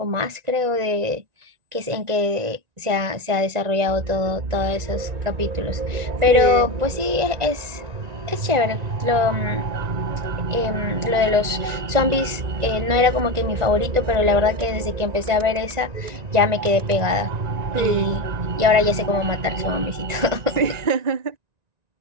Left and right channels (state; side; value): late; left; 1.9 ms